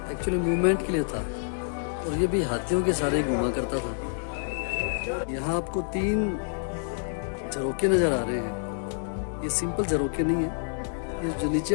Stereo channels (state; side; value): silent; right; digital silence